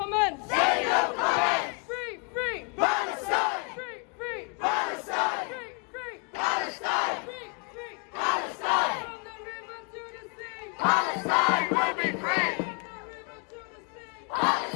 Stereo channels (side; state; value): right; quieter; 34.7 dB